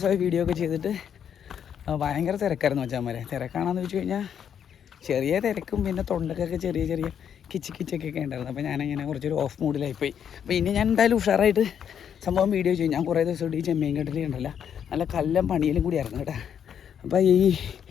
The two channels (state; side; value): quieter; right; 8.4 dB